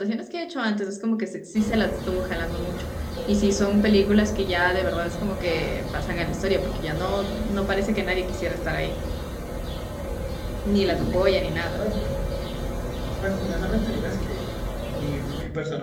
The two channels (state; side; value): identical; both; correlation 1.00